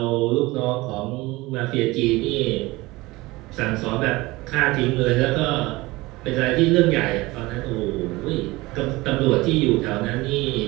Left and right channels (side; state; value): left; quieter; 21.0 dB